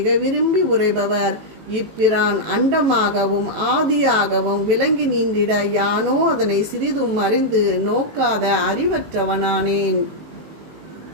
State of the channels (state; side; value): late; left; 18 ms